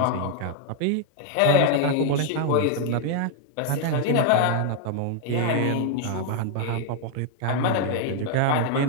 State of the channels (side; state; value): both; different; correlation 0.00